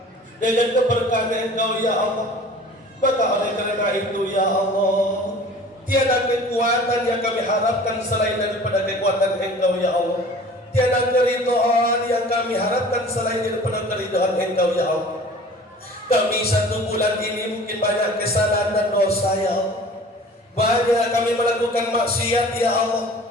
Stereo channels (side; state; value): both; normal; correlation 0.45